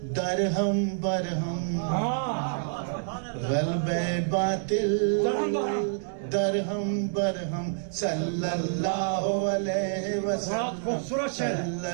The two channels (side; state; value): left; silent; digital silence